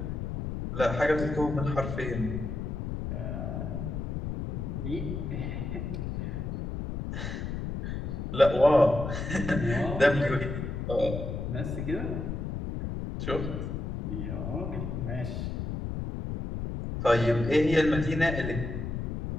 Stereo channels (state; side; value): noise; left; rumble, 4 dB below the sound